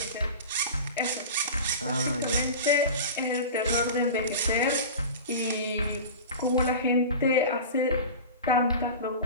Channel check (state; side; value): inverted; both; correlation -0.31